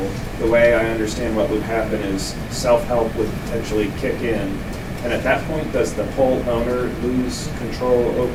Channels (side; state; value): both; identical; correlation 1.00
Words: the way I understand what would happen is Selfhelp would potentially kick in, and at that point, does the pole owner lose control